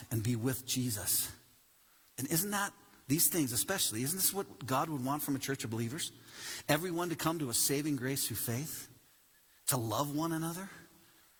and be with Jesus. And isn't that, these things especially, isn't this what God would want from a church of believers? Everyone to come to a saving grace through faith, to love one another,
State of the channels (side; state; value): both; identical; correlation 1.00